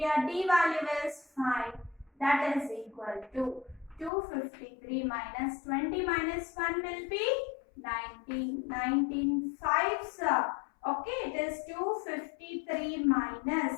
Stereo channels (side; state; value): right; drops out; at 4.1 s